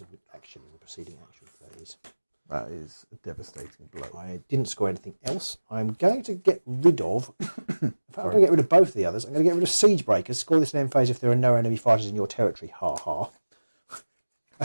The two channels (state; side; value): inverted; both; correlation -1.00